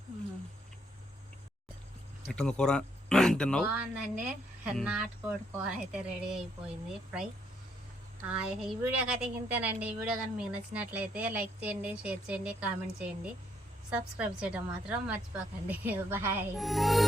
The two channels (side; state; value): both; normal; correlation 0.72